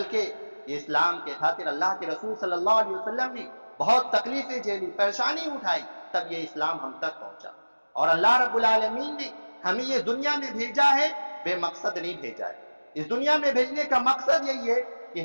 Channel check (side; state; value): both; inverted; correlation -1.00